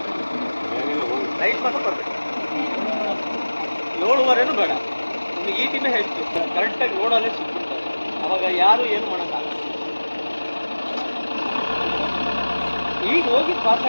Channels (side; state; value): both; inverted; correlation -1.00